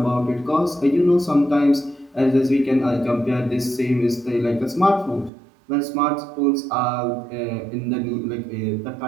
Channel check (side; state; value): left; drops out; at 5.3 s